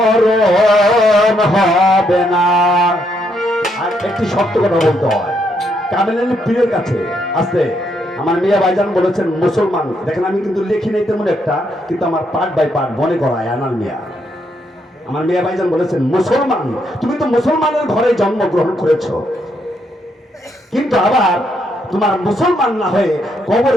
হবে না। আর একটি সত্য কথা বলতে হয়, কামেল পীরের কাছে আসতে আমার মিয়া ভাইজান বলেছেন মুসলমান, দেখেন আমি কিন্তু লিখি নাই তেমন একটা, কিন্তু আমার পার্ট বাই পার্ট মনে করায় আনাল মিয়া। আমার মিয়া ভাইজান বলেছেন মুসলমান, তুমি তো মুসলমানের ঘরে জন্মগ্রহণ করেছো, কিন্তু আবার তোমার মুসলমান না হয়ে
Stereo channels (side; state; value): both; normal; correlation 0.75